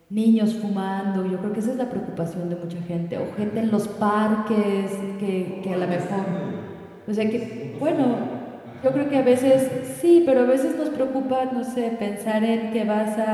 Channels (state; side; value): identical; both; correlation 1.00